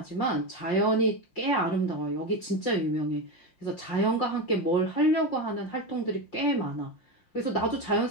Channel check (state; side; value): late; right; 5.7 ms